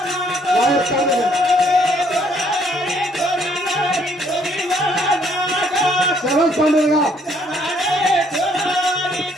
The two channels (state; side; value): normal; both; correlation 0.65